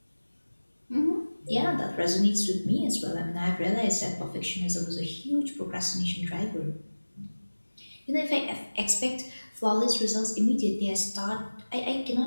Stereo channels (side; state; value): both; inverted; correlation -1.00